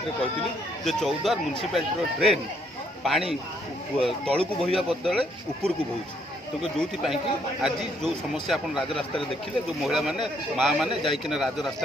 कहती जे चौदार म्यूनिसिपालिटी ड्रेन पानी तलू बोहिया बदले उपरकू बोची तो जो आज जो समस्या आप राजरास्त देखिले जो महिला मैंने माँ मैंने जाइकिना राजरास्त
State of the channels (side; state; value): both; normal; correlation 0.69